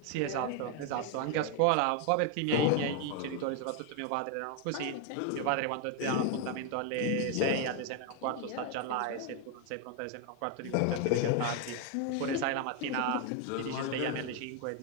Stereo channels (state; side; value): different; both; correlation 0.01